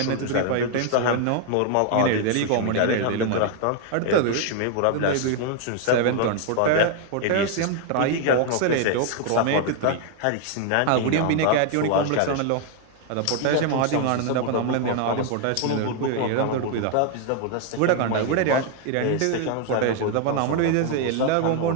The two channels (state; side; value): different; both; correlation 0.00